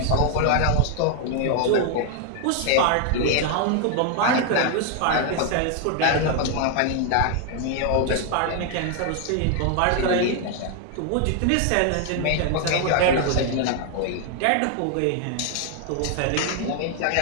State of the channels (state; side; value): different; both; correlation 0.00